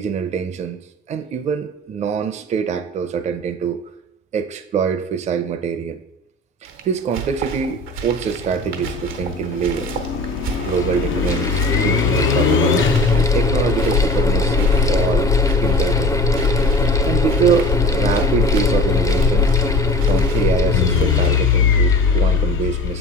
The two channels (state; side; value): normal; both; correlation 0.39